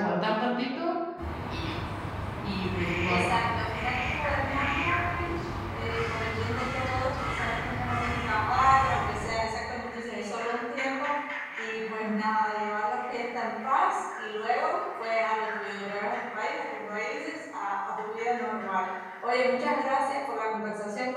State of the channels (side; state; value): both; identical; correlation 1.00